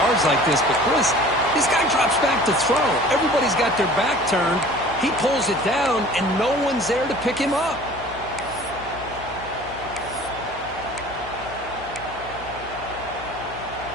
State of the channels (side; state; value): left; noise; hum, 18 dB below the sound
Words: like this, but Chris, this guy drops back to throw. Everybody's got their back turned. He pulls it down, and no one's there to pick him up.